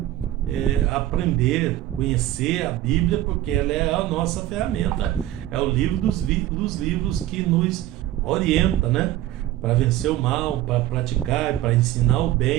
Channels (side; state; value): left; quieter; 14.2 dB